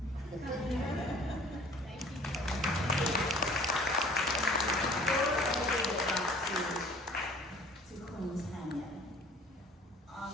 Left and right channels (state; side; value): normal; both; correlation 0.50